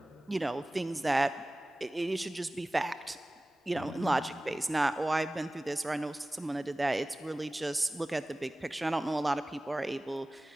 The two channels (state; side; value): normal; both; correlation 0.97